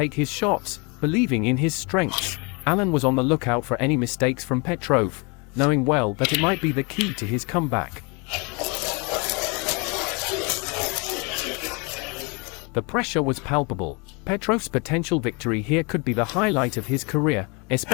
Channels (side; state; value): right; quieter; 30.8 dB